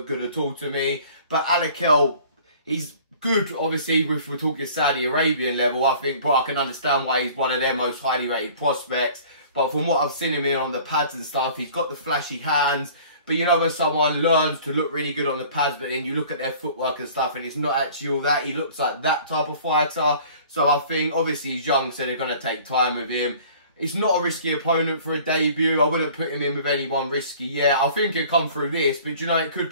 good at all to me. But Alakel, he's good, obviously, if we're talking Saudi Arabian level, I think, but I can understand why he's one of their most highly rated prospects. But from what I've seen him in on the pads and stuff, he's got the flashy hands. But you know when someone learns to look really good on the pads, but then you look at their footwork and stuff and it's not actually all that. He looks like that type of fighter. So I think, obviously he's young, so they're going to take time with him. It's not a risky opponent for a debut. I wouldn't put him in with anyone risky yet. I think he'll come through this, but you know, it could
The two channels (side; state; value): both; inverted; correlation -0.49